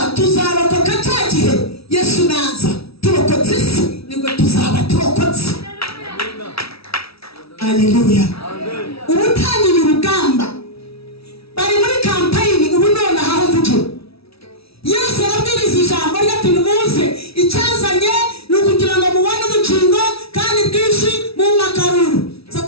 tuzarokoka cya gihe Yesu naza, turokotse isi nibwo tuzaba turokotse. Haleluya. Ubu utangiye urugamba, bari muri kampayini ubu none aho mvugira. Yesu arabwiriza ijambo rye ati nimuze, icyazanye ni ukugira ngo mubone ubugingo kandi bwinshi mu makaruru.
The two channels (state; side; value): late; right; 0.76 ms